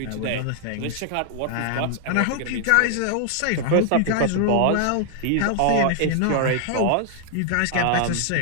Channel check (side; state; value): both; different; correlation -0.01